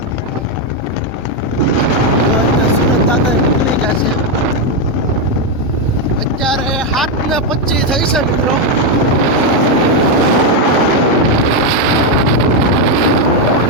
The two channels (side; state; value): both; normal; correlation 0.04